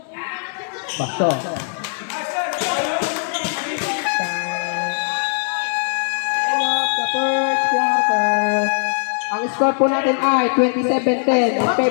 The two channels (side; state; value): right; silent; 66 dB below the other